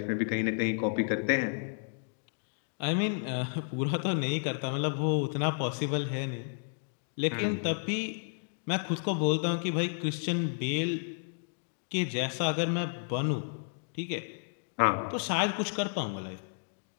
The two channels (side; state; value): right; silent; digital silence